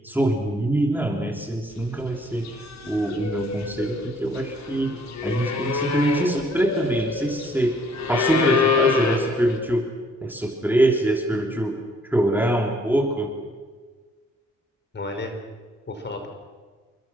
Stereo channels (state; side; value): normal; both; correlation 0.63